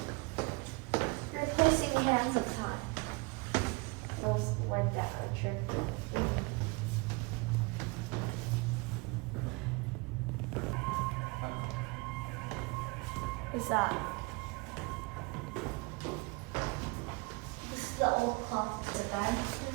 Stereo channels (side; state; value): left; quieter; 27.4 dB